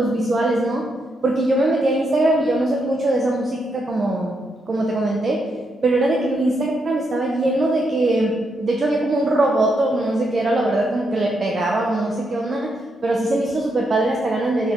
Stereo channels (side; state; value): both; normal; correlation 0.80